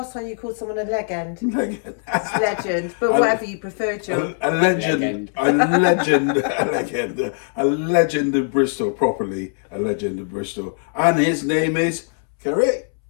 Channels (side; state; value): right; silent; 65 dB below the other